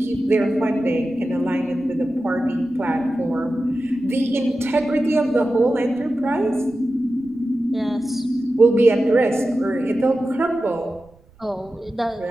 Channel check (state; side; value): noise; right; rumble, 28 dB below the sound